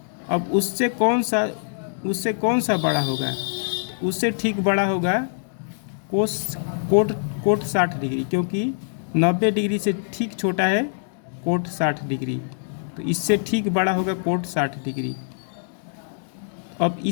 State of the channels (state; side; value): silent; right; digital silence